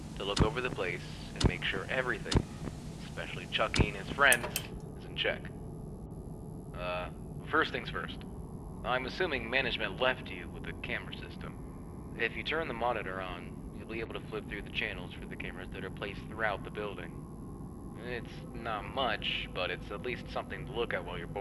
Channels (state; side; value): identical; both; correlation 1.00